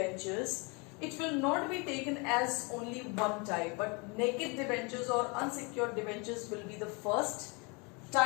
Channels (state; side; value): quieter; right; 30.8 dB